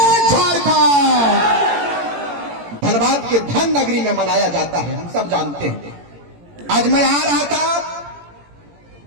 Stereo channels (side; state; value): left; late; 17 ms